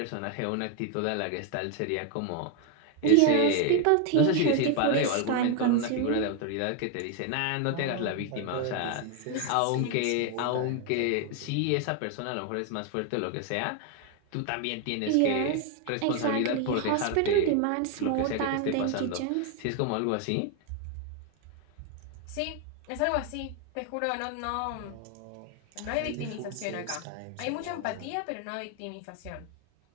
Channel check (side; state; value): both; different; correlation 0.01